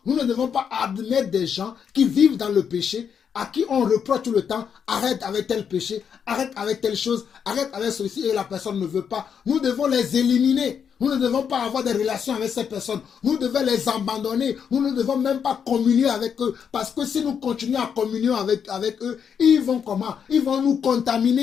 nous ne devons pas admettre des gens qui vivent dans le péché, à qui on reproche tout le temps, arrête avec tel péché, arrête avec telle chose, arrête avec ceci, et la personne ne veut pas. Nous devons les éliminer. Nous ne devons pas avoir des relations avec ces personnes. Nous devons les abandonner. Nous ne devons même pas communier avec eux. Parce que si nous continuons à communier avec eux, ils vont comment? Ils vont nous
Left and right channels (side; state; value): right; quieter; 7.4 dB